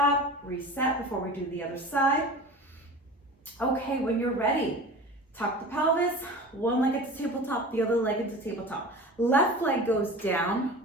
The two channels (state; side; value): normal; both; correlation 0.36